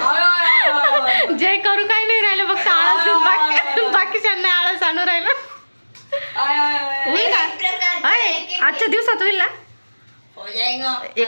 जे करू काही नाही राहिलं फक्त आळस. बाकीच्यांना आळस आणू राहिलं. होईल का आजच्या दिवसात? होईल ना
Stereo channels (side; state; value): both; inverted; correlation -1.00